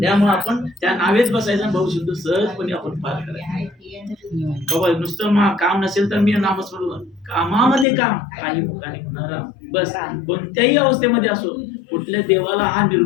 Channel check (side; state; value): right; drops out; at 7.9 s